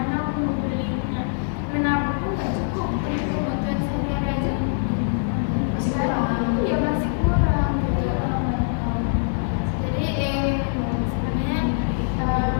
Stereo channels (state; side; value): silent; right; 56 dB below the other